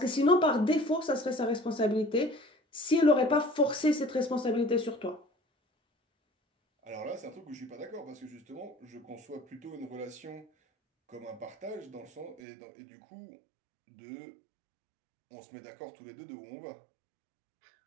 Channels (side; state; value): left; drops out; at 12.4 s